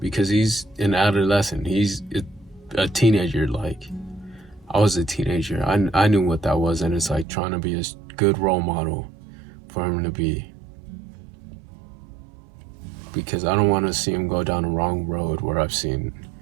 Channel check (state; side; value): drops out; left; at 7.2 s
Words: because he's an adolescent. He's a teenager. Like, I was a teenager. I knew what that was, and it's like trying to be a good role model for him to be. Because I don't want to see him go down the wrong road where I've seen